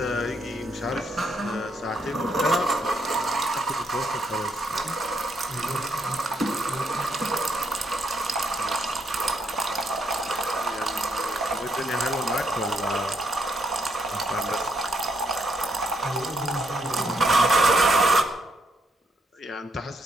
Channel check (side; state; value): both; normal; correlation 0.76